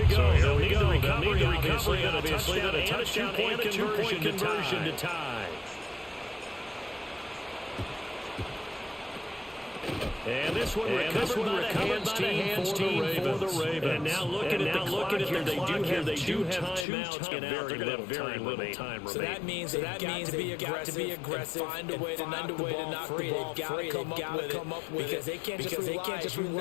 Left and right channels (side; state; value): right; drops out; at 16.9 s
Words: go. They'll need the recovery, obviously, and a touchdown and a two-point conversion to tie. And this one recovered by the hands team for the Ravens. And now looking at the clock here, they do have timeouts and very little time remaining. So that means they've got to be aggressive, find a way to knock the ball free. They've got to come up with it because they can't just